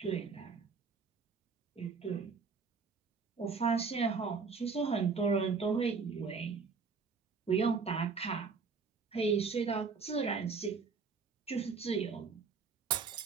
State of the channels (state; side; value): quieter; left; 5.1 dB